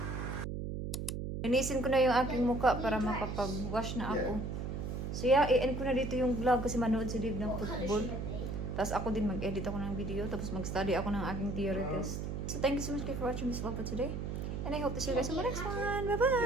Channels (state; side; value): noise; right; hum, 4 dB below the sound